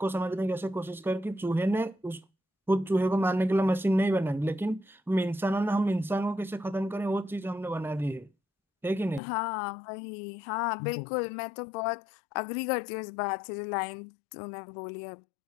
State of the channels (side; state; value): right; drops out; at 9.2 s